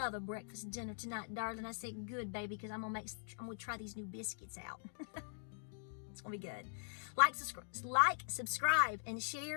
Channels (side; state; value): right; silent; digital silence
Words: a breakfast dinner tonight, darling. I said, good, baby, because I'm going to try these new biscuits out. It's going to be good. Like, subscribe, and